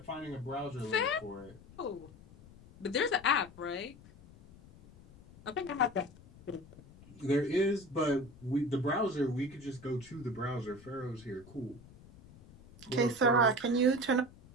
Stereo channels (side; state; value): left; noise; rumble, 21 dB below the sound